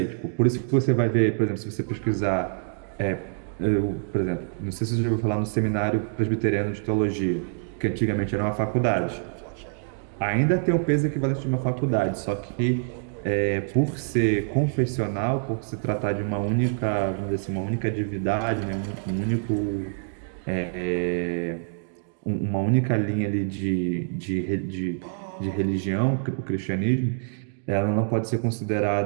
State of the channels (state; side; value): silent; left; digital silence